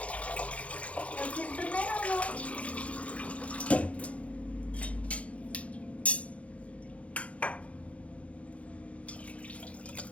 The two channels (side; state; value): right; late; 0.064 ms